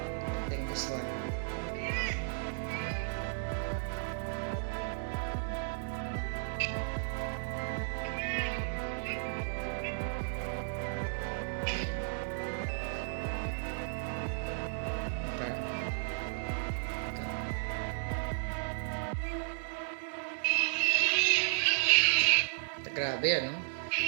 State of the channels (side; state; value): left; silent; 55 dB below the other